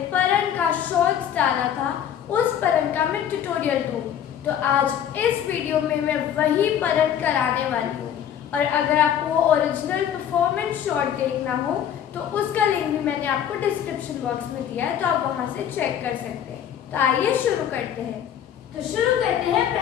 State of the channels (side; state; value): right; quieter; 9.6 dB